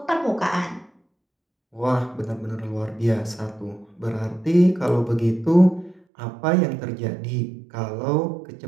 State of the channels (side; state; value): left; drops out; at 6.0 s